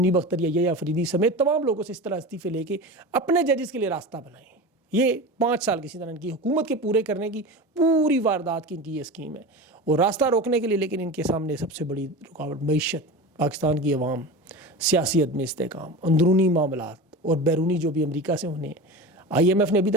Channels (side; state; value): both; normal; correlation 0.29